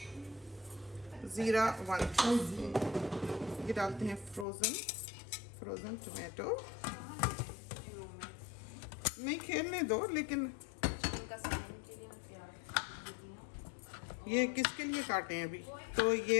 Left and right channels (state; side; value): drops out; right; at 4.5 s